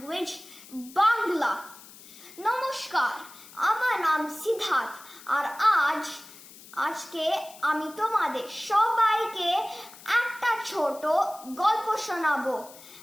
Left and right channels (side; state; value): left; noise; hiss, 19 dB below the sound